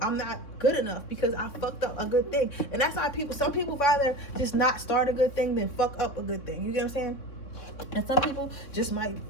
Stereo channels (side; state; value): right; late; 3.6 ms